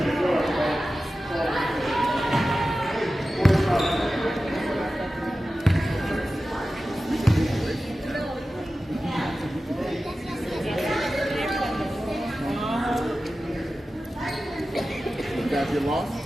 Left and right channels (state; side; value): normal; both; correlation 0.94